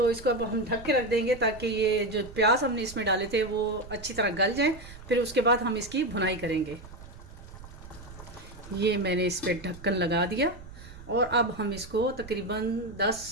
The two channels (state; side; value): noise; right; rumble, 16 dB below the sound